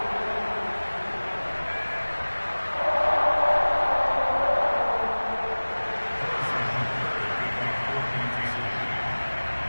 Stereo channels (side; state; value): both; inverted; correlation -1.00